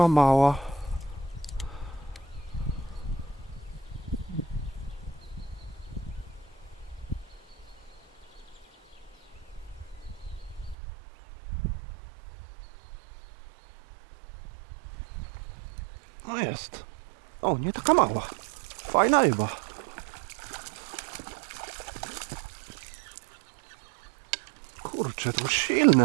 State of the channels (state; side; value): drops out; left; at 10.8 s